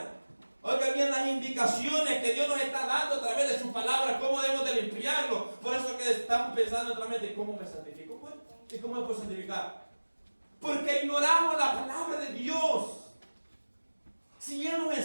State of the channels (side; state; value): both; inverted; correlation -1.00